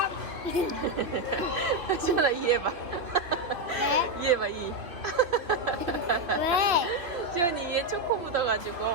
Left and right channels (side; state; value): left; late; 2.9 ms